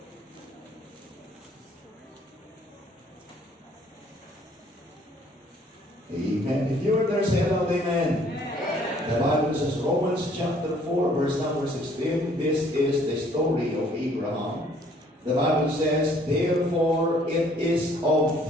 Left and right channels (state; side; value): normal; both; correlation 0.60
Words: Amen. If you are there, say aloud, amen. The Bible says, Romans chapter 4, verse number 16, this is the story of Abraham. The Bible says, therefore it is of